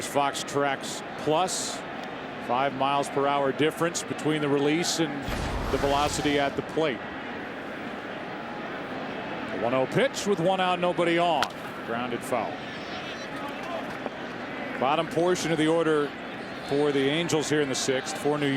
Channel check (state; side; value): identical; both; correlation 1.00